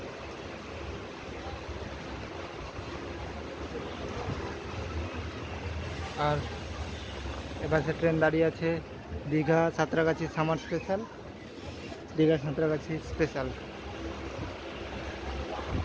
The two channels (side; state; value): both; identical; correlation 1.00